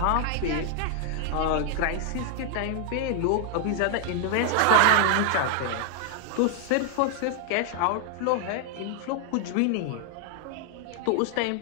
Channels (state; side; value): different; both; correlation 0.00